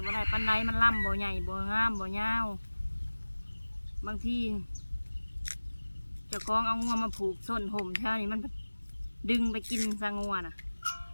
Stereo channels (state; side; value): inverted; both; correlation -1.00